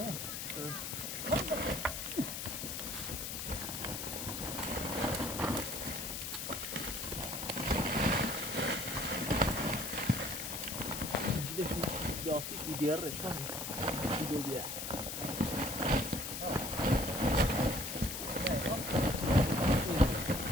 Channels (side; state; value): left; noise; hiss, 5 dB below the sound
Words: لاستیک ایدیاره شان شیدو بیه